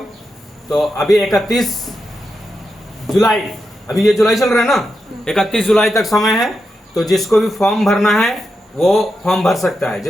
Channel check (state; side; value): normal; both; correlation 0.87